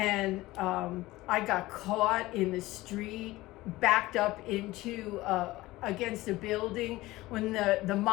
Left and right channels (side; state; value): right; quieter; 18.5 dB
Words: I got caught in the street, backed up into against a building when the